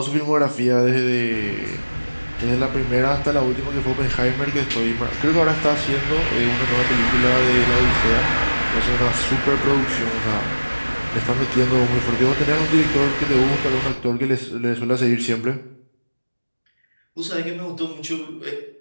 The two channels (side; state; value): both; inverted; correlation -1.00